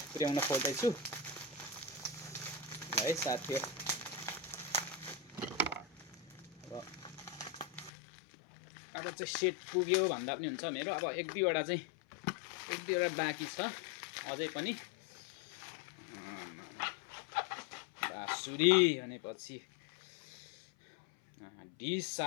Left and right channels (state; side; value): drops out; right; at 7.9 s